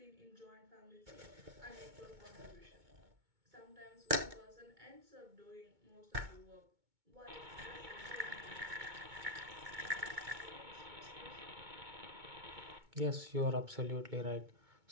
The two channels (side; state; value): left; late; 2.2 ms